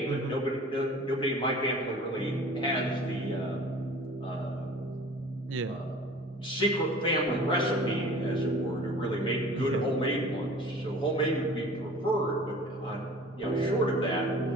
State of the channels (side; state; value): both; normal; correlation 0.45